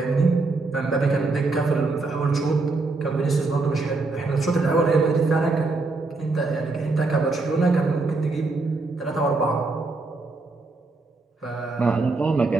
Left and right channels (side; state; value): left; quieter; 3.5 dB